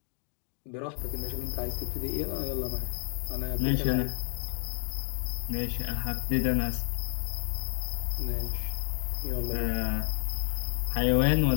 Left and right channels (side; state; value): right; silent; digital silence